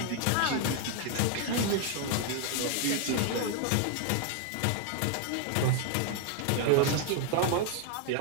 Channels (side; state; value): both; different; correlation 0.00